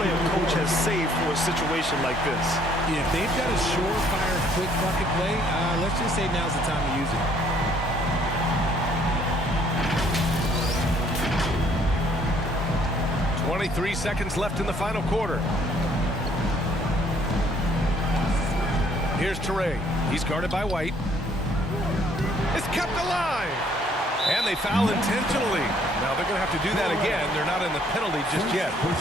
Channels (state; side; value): normal; both; correlation 0.63